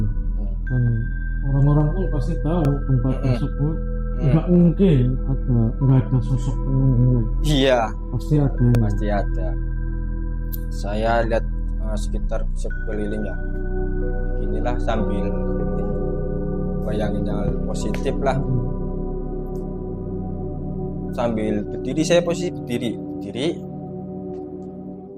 Dan orang-orang pun pasti tahu tempat tersebut nggak mungkin nggak ada sosok penunggunya. Iya, Pasti ada. pasti ada. Saya lihat sekitar sekeliling ya, inilah sambil bayangin yang positif lah. Sambil berdiri, saya posisi berdiri.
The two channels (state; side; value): identical; both; correlation 1.00